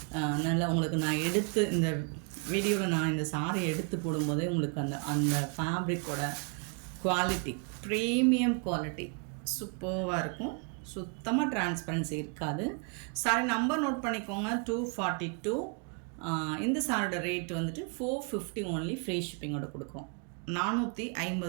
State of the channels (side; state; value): left; quieter; 36.9 dB